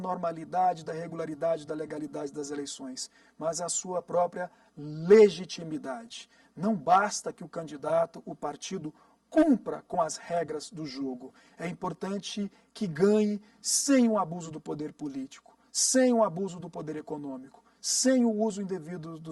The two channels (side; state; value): both; identical; correlation 1.00